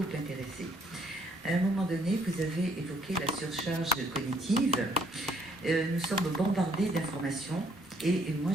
intéressé. À un moment donné, vous avez évoqué la surcharge cognitive. Nous sommes bombardés d'informations et moi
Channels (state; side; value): normal; both; correlation 0.66